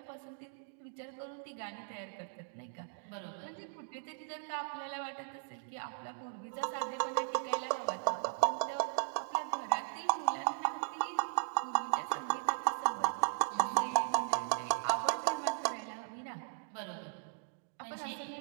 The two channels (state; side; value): silent; left; digital silence